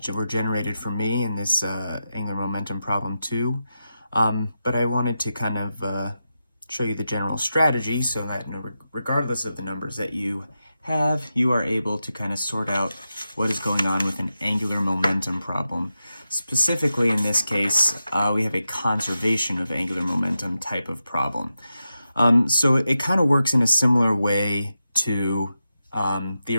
were generated for me in this angular momentum problem too. But I wanted to kind of show you the general strategy so that regardless of the numbers that you have, you are able to kind of sort out what is going on with an angular momentum problem. Specifically, in this case, we have a conservation of angular momentum type of problem. So it kind of works in a similar way to the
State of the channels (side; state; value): both; inverted; correlation -0.90